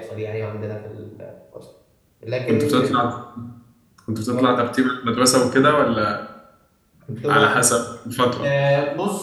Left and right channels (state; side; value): identical; both; correlation 1.00